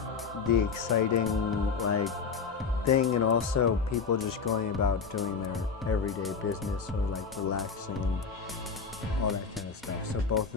exciting thing, and also people just going about doing their everyday business or relaxing and all that kind of stuff. So both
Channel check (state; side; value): quieter; right; 5.4 dB